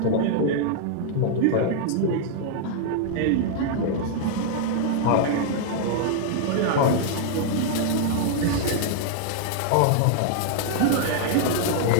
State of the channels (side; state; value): both; different; correlation 0.00